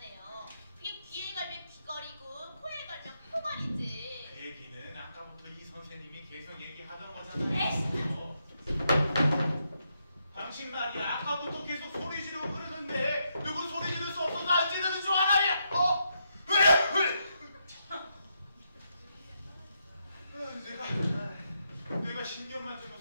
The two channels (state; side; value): inverted; both; correlation -0.80